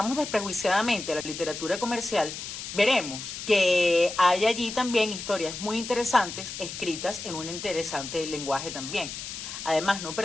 desprejuiciadamente a la literatura comercial, veremos que hay allí también historias muy interesantes escritas en un interesante lenguaje también. Además, no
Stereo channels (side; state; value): left; noise; hiss, 8 dB below the sound